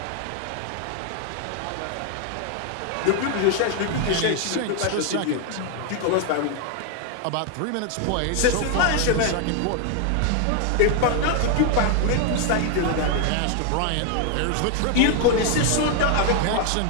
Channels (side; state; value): both; different; correlation 0.00